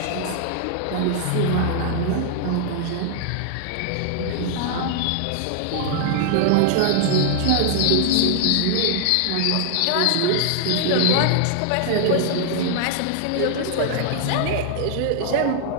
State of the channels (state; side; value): different; both; correlation 0.00